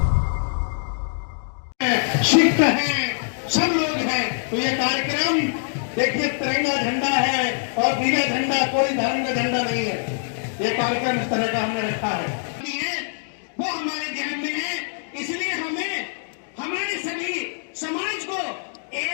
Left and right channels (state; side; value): silent; right; digital silence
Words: सिख है, सब लोग हैं, तो ये कार्यक्रम देखिए तिरंगा झंडा है और नीला झंडा कोई धर्म का झंडा नहीं है। ये कार्यक्रम इस तरह का हमने रखा है, वो हमारे ध्यान में है। इसलिए हमें हमारे सभी समाज को